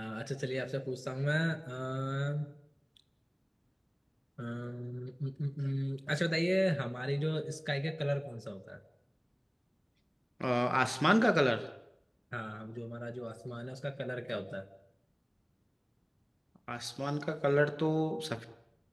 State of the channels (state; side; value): identical; both; correlation 1.00